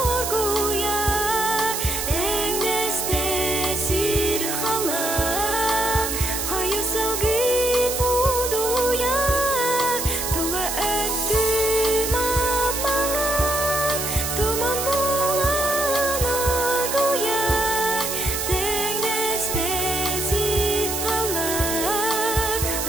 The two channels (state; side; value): noise; right; hiss, 3 dB below the sound